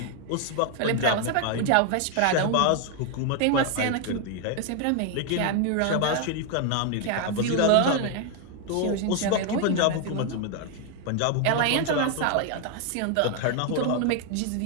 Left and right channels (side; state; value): both; different; correlation 0.01